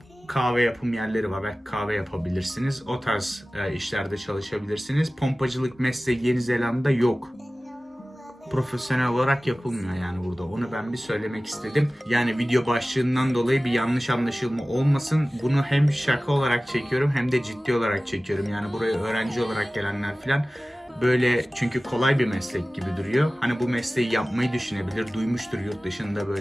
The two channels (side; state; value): both; normal; correlation 0.97